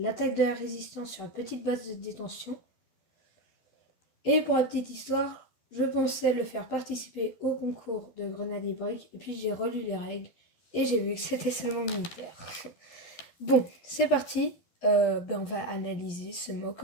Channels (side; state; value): right; late; 12 ms